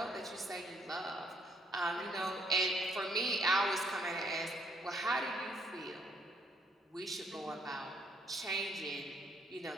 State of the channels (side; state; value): both; normal; correlation 0.69